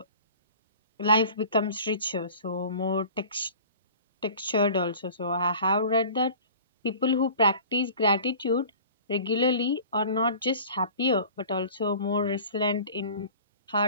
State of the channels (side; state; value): both; inverted; correlation -0.43